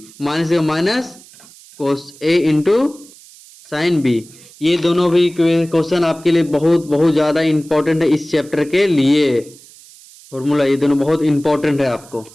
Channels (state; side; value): noise; right; hiss, 23 dB below the sound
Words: minus minus cos A into sine B. ये दोनों भी क्वेश्चन आपके लिए बहुत बहुत ज़्यादा इंपॉर्टेंट है इस चैप्टर के लिए। फॉर्मूला ये दोनों बहुत इंपॉर्टेंट है, आपको